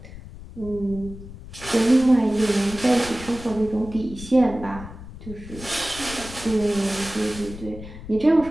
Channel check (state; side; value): noise; left; rumble, 14 dB below the sound